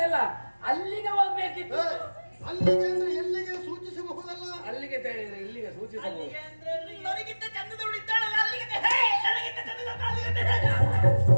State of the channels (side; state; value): both; inverted; correlation -1.00